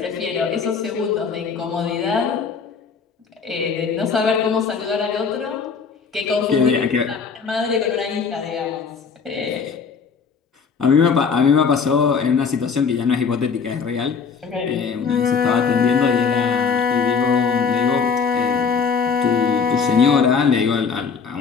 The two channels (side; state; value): right; quieter; 5.7 dB